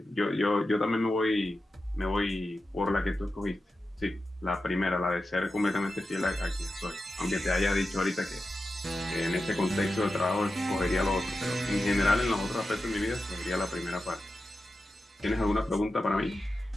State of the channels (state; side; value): normal; both; correlation 0.92